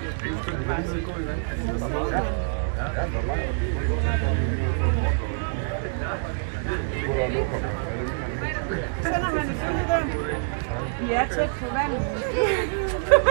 Så sender han. Sender han et billede der? Vi er tæt på vandet.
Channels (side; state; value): left; silent; digital silence